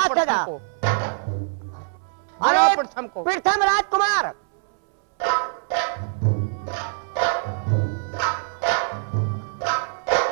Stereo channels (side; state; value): left; silent; 63 dB below the other